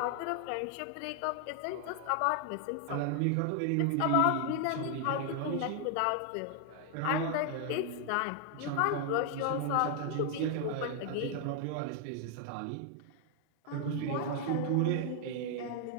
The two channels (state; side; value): different; both; correlation 0.00